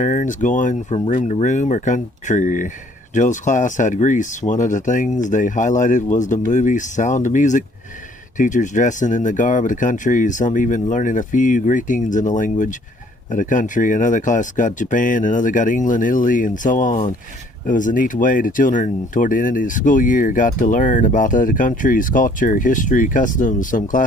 going from room to room or country. Joe's class had Greece. One of the things they highlighted was the movie Sound of Music. Teachers dressing in the garb of the country, some even learning a few greetings in the language of the country. Another class got Japan, another got England, Italy, and so on. It was a neat way the children, toward the end of the school year, got to learn about other countries, culture, history, customs. Some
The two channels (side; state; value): both; normal; correlation 0.60